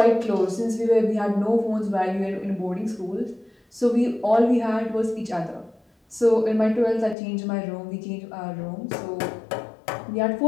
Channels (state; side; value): drops out; right; at 7.2 s